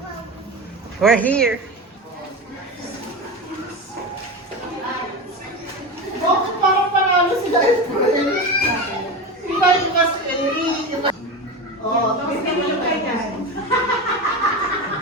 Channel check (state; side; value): normal; both; correlation 0.23